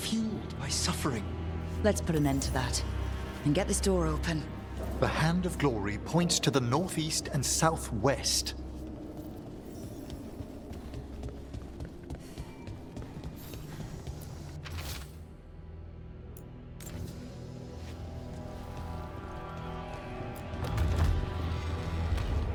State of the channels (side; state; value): both; identical; correlation 1.00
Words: by suffering. Let's put an end to that. And get this door open. The hand of glory points to the northeast and southwest.